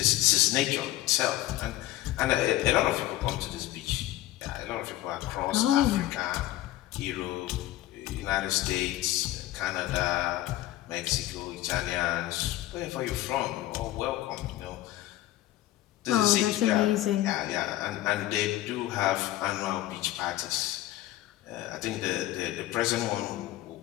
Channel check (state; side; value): quieter; right; 15.3 dB